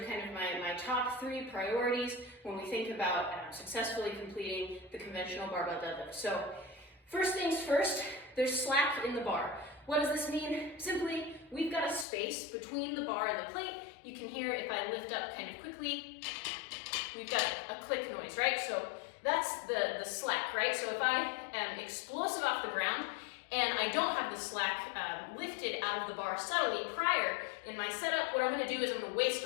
kind of my top 3 priorities when we think about successfully completing the conventional barbell deadlift. So first things first, there's slack in the bar. What does this mean? Simply, we've got a space between the bar and the plate. You can hear if I lift up kind of quickly, we've got a click noise, right? So that's the slack, right? So if I am explosive off the ground and I don't have the slack lifted out of the bar subtly prior in my setup, what I'm gonna do is I'm gonna waste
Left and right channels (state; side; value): drops out; right; at 12.1 s